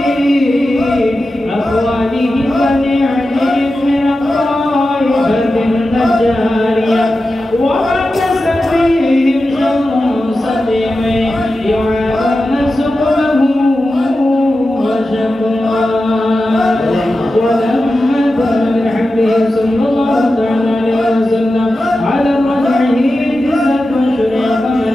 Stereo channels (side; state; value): both; normal; correlation 0.92